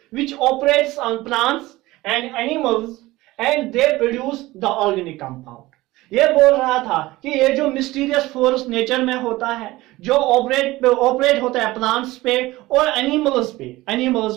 which operates on plants and animals and they produce the organic compound। ये बोल रहा था कि ये जो मिस्टीरियस फोर्स नेचर में होता है, जो ऑपरेट होता है प्लांट्स पे और एनिमल्स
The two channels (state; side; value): quieter; left; 18.8 dB